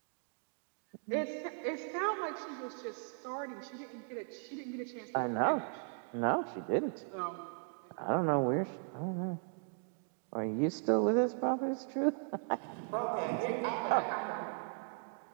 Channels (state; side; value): silent; left; 53 dB below the other